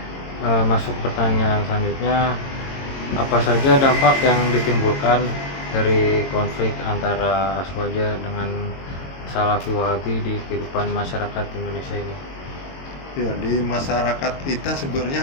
Masuk pertanyaan selanjutnya, apa saja dampak yang ditimbulkan dari konflik antara Aswaja dengan Salafi Wahabi di kehidupan masyarakat Indonesia ini? Ya, di masyarakat kita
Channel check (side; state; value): right; late; 22 ms